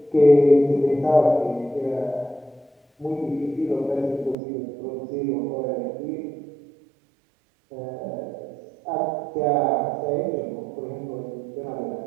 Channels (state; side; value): drops out; left; at 4.4 s